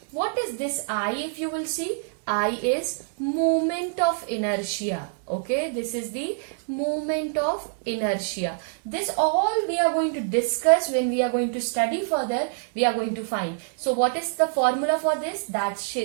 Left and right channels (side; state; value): left; silent; digital silence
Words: What is this I, if you will see? I is moment of inertia. Okay, this is the moment of inertia. This all we are going to discuss when we are going to study further. We are going to find. So what is the formula for this? That